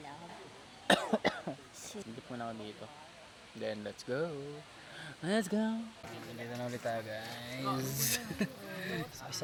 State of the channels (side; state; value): both; identical; correlation 1.00